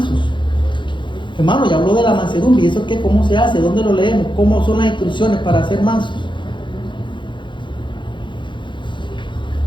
Hermano, ya habló de la mansedumbre. ¿Y eso qué? ¿Cómo se hace? ¿Dónde lo leemos? ¿Cómo son las instrucciones para ser mansos?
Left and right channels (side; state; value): right; late; 0.23 ms